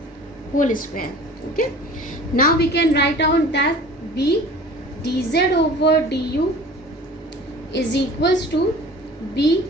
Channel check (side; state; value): both; normal; correlation 0.43